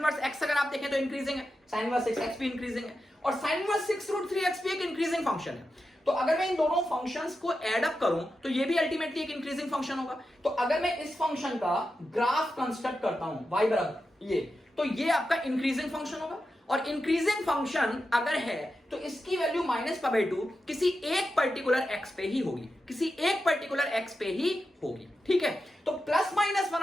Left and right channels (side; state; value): both; normal; correlation 0.89